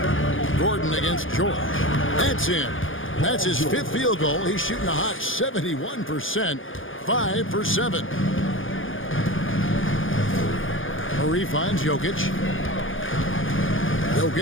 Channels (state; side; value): late; right; 0.58 ms